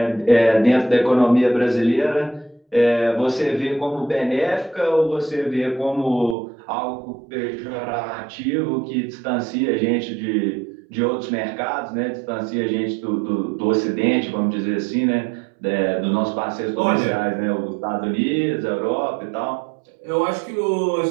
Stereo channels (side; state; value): left; drops out; at 6.4 s